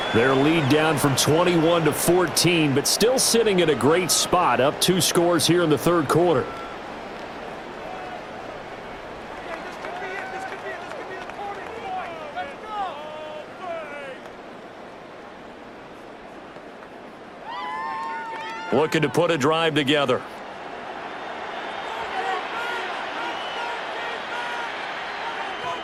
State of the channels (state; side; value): identical; both; correlation 1.00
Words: Their lead down from 21 to 14, but still sitting at a great spot, up 2 scores here in the third quarter. Looking to put a drive together.